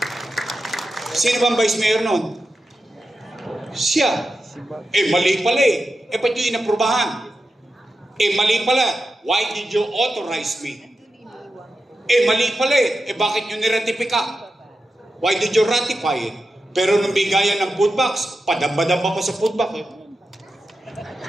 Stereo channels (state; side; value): normal; both; correlation 0.90